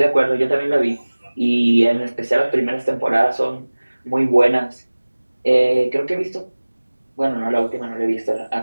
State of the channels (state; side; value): inverted; both; correlation -1.00